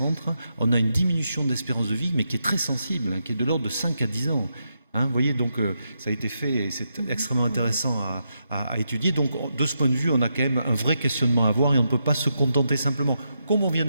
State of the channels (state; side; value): inverted; both; correlation -0.84